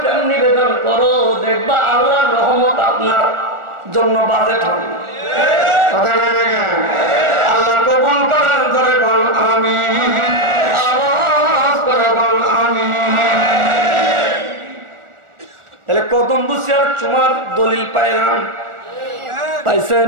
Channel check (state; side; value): late; left; 1.4 ms